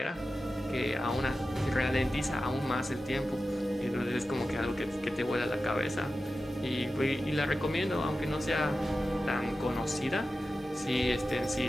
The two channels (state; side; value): normal; both; correlation 0.93